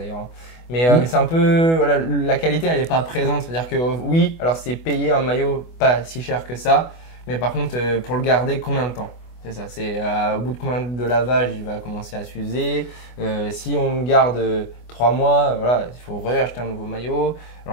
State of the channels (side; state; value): right; late; 24 ms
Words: Mais c'est un peu, voilà, la qualité, elle n'est pas présente. C'est-à-dire que oui, alors c'est payer un maillot pas si cher que ça, mais par contre, pour le garder, combien de temps? C'est ça, c'est au bout de combien de lavage il va commencer à s'user. Si on le garde 3 mois, voilà, il faut réacheter un nouveau maillot.